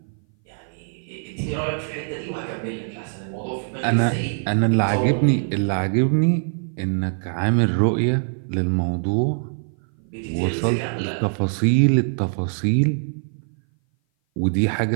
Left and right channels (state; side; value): silent; left; 58 dB below the other